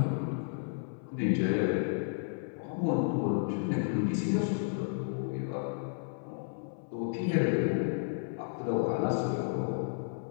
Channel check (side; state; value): right; silent; 56 dB below the other